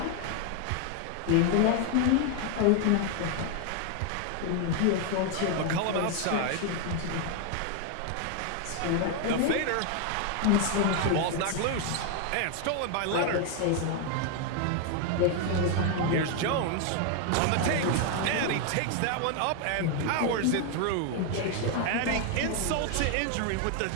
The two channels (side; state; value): both; different; correlation 0.01